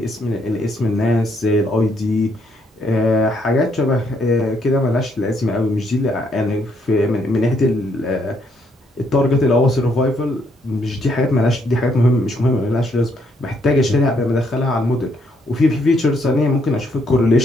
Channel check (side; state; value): both; normal; correlation 0.72